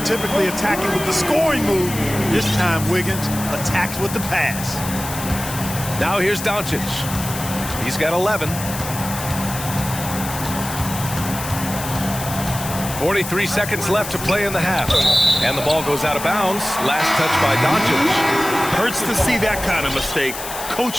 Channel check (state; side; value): noise; left; hiss, 9 dB below the sound